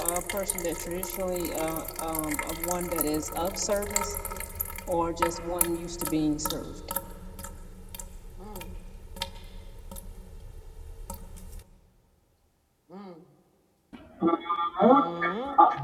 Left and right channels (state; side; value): identical; both; correlation 1.00